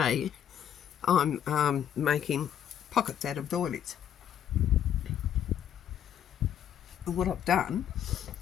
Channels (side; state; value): right; quieter; 9.5 dB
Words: I'm making pockets out of doilies. And what I've done